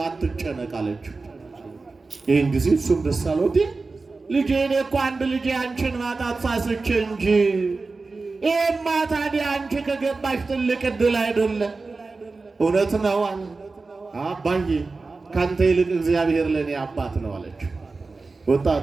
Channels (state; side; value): quieter; left; 3.9 dB